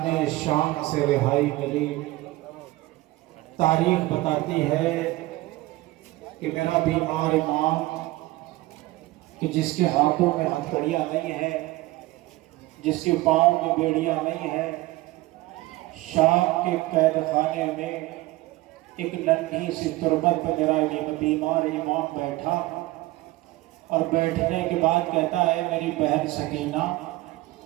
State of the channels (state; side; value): quieter; left; 19.0 dB